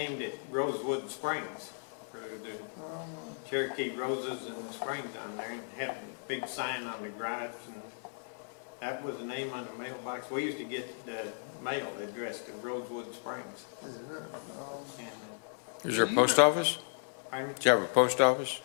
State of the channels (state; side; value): silent; right; 54 dB below the other